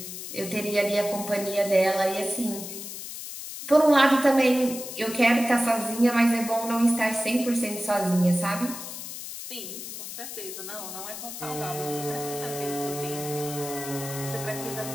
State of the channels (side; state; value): left; noise; hiss, 9 dB below the sound